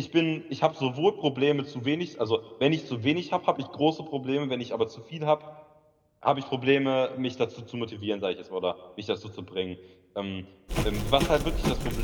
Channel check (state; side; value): identical; both; correlation 1.00